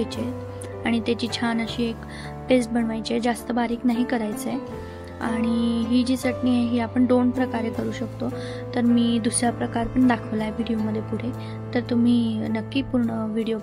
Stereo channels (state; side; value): identical; both; correlation 1.00